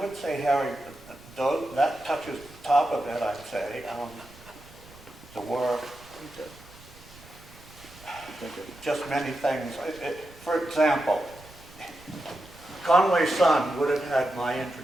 would say, Harry, that touches the top of it, I'd say. There were just many things. For example, Conway's son would have had my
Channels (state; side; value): noise; right; rumble, 22 dB below the sound